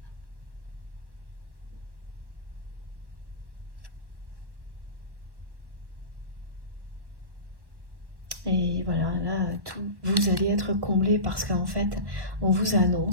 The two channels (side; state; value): left; late; 1.1 ms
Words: Et voilà, là, vous allez être comblé parce qu'en fait, on vous